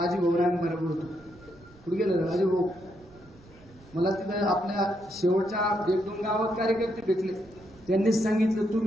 होतो. कुठे गेलं राजूभाऊ? मला तिथं आपल्या शेवटच्या 1-2 गावात कार्यकर्ते भेटले. त्यांनीच सांगितलं,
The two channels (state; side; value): noise; right; rumble, 25 dB below the sound